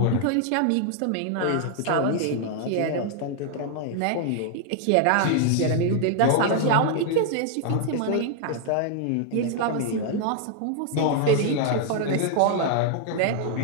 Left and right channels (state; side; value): different; both; correlation 0.00